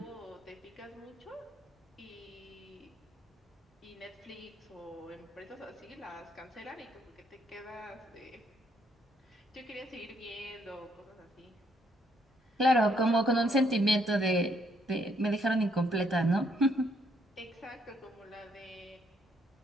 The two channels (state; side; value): normal; both; correlation 0.71